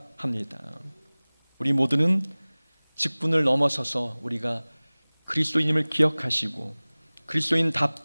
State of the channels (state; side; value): inverted; both; correlation -1.00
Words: 합니다. 우리 모두는 직분을 넘어서서 우리가 그리스도인임을 기억하시고